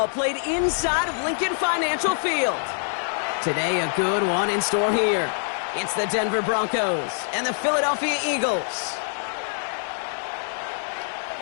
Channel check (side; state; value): right; silent; digital silence